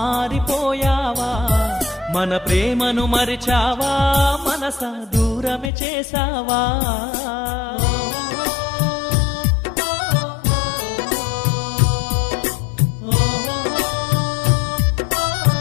మన ప్రేమను మరిచావా మనసా దూరమే చేసావా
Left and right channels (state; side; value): drops out; right; at 5.7 s